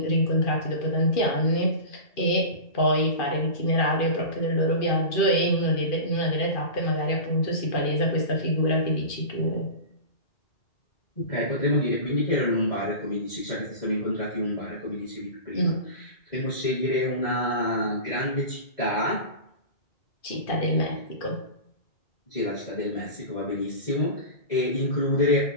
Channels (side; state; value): right; late; 2.4 ms